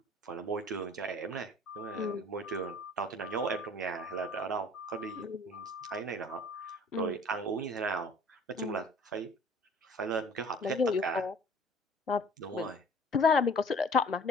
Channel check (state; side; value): normal; both; correlation 0.49